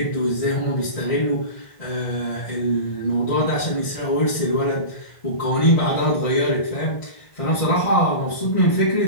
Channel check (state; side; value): late; right; 1.5 ms